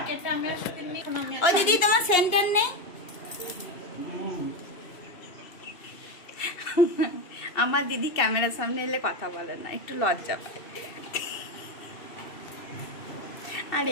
কেটে আমি আর সাথে নিই। ও দিদি, তোমার সেন্টার নেই? আমার দিদি ক্যামেরার সামনে এলে কথা বলে না, একটু লজ্জা পায়। আর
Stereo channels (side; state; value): right; late; 2.8 ms